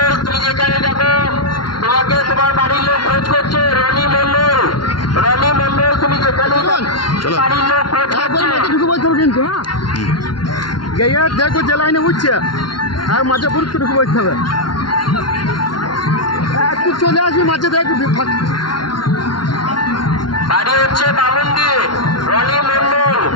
তুমি যেখানে যাবো তোমাকে তোমার বাড়ির লোক খোঁজ করছে। রনি মন্ডল তুমি যেখানে বাড়ির লোক খোঁজ করছে। ঢুকে বলতে হবে কিন্তু, হ্যাঁ গিয়ে দেখো যে লাইনে উঠছে আর মাঝে পুরুষ ঢুকে বলতে হবে। একটু চলে আসবি মাঝে দেখ। বাড়ি হচ্ছে বামুনদি, রনি মন্ডল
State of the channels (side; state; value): right; late; 0.71 ms